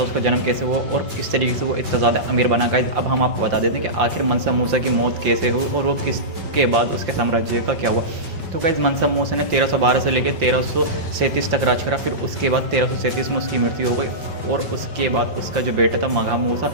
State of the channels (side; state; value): left; late; 5.7 ms